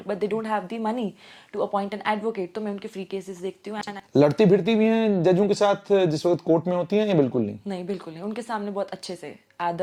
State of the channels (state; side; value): identical; both; correlation 1.00